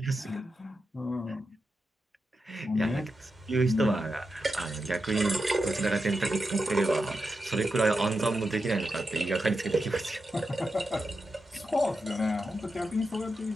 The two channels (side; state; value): both; normal; correlation 0.88